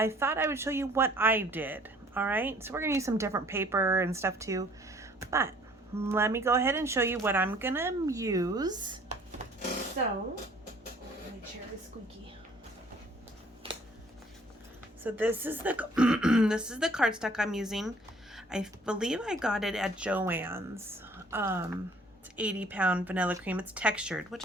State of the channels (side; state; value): both; normal; correlation 0.56